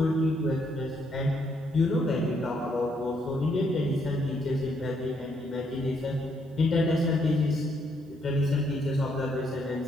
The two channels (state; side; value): normal; both; correlation 0.73